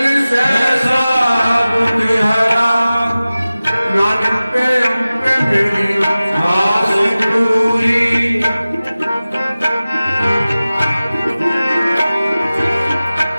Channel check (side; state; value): both; inverted; correlation -0.97